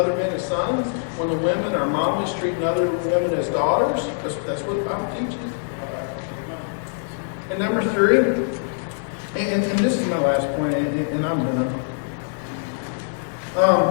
men as sons, when the women are mommies treating other women as daughters. That's what the Bible teaches. And number three, and this is my last point, and I'm done.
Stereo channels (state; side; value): silent; right; digital silence